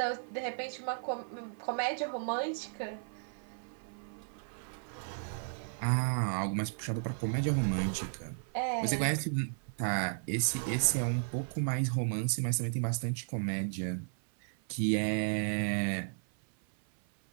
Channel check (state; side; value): silent; left; 55 dB below the other